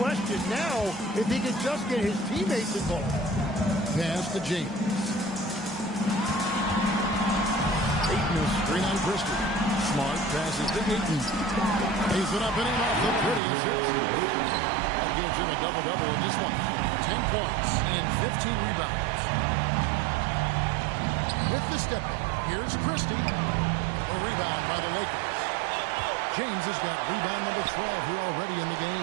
now if he can just get his teammates involved. Pass to James. Ayton is screen on Christie. Smart passes to Ayton. Lays it up and in off the prettiest hit. That gives him a double-double in this one. 10 points and 15 rebounds. with the step in. Here's Christie. A rebound by the Lakers. James has got rebound number 12 here already in the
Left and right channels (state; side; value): drops out; left; at 13.4 s